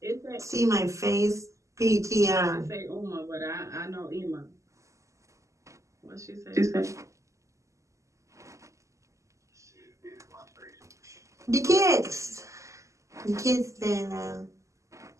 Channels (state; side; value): late; left; 0.15 ms